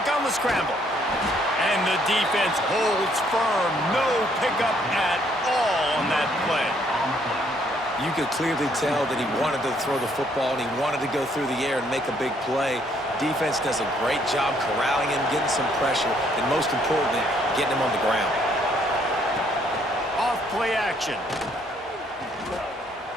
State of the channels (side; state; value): both; normal; correlation 0.67